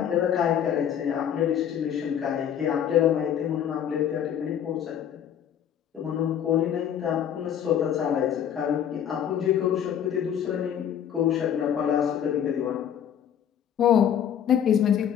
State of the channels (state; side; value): quieter; right; 9.3 dB